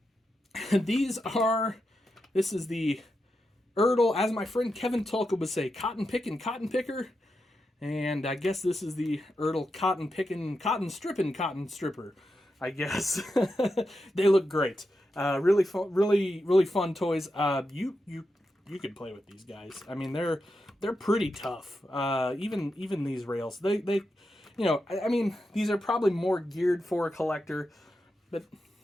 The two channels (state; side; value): normal; both; correlation 0.87